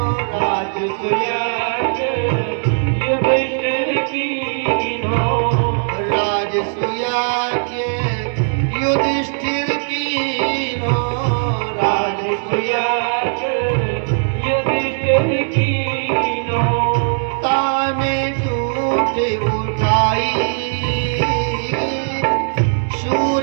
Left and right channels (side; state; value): left; silent; digital silence